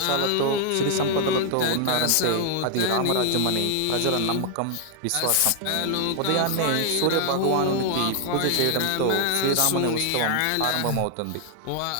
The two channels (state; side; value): different; both; correlation 0.00